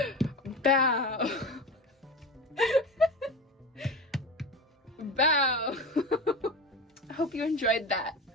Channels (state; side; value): normal; both; correlation 0.28